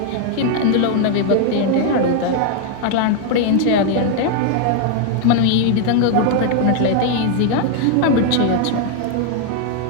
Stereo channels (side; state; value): both; different; correlation 0.00